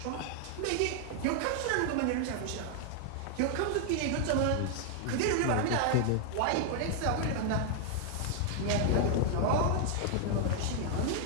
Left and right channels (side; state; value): both; different; correlation 0.00